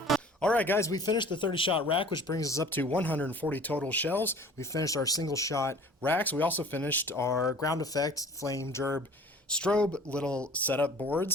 Alright guys, we finished the 30-shot rack, which brings us up to 140 total shells. We finished our single-shot racks. We also finished our ground effect, flame, gerb, strobe little setup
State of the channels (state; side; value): normal; both; correlation 0.46